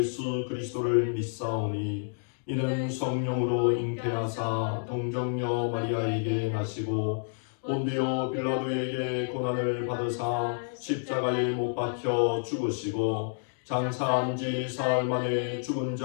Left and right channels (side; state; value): right; silent; digital silence